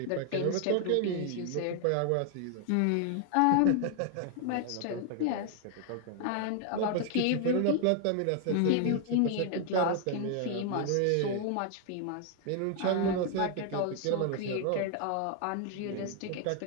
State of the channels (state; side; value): different; both; correlation 0.00